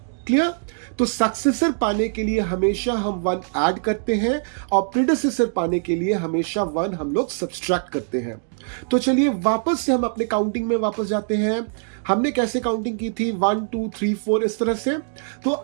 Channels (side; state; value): left; silent; digital silence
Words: क्लियर? तो सक्सेसर पाने के लिए हमेशा हम 1 ऐड करते हैं और प्रीडेसेसर पाने के लिए हमेशा 1 हम लोग सब्सट्रैक्ट करते हैं। तो चलिए वापस से हम अपने काउंटिंग में वापस जाते हैं। हमने कैसे काउंटिंग की थी? 1 2 3 4 इस तरह से। तो